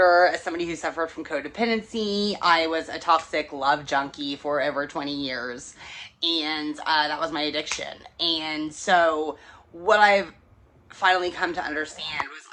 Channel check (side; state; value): both; identical; correlation 1.00